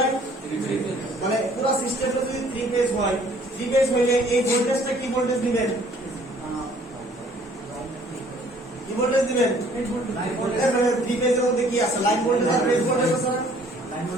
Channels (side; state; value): both; normal; correlation 0.57